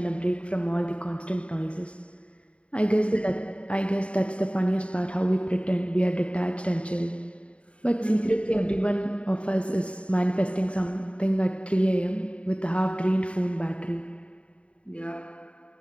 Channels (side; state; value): right; late; 0.060 ms